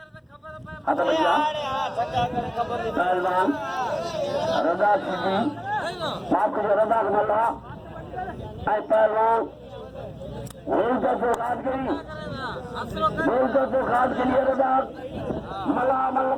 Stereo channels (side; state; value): both; identical; correlation 1.00